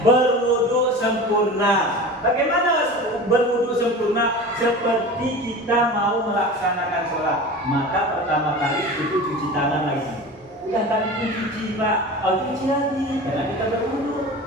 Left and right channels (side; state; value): both; normal; correlation 0.34